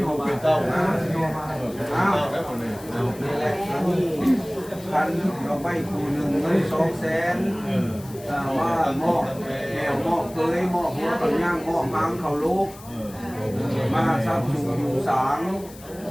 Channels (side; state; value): left; noise; hiss, 20 dB below the sound